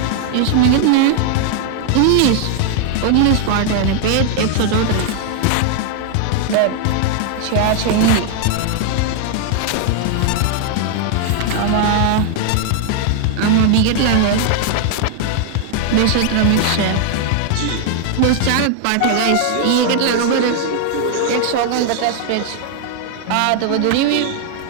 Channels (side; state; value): both; different; correlation 0.00